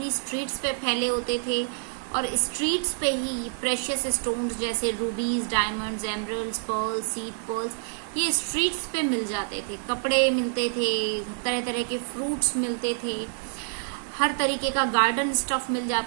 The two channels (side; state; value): left; silent; 60 dB below the other